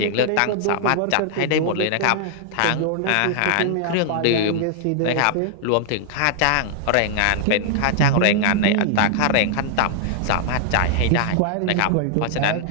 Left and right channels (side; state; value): both; different; correlation -0.01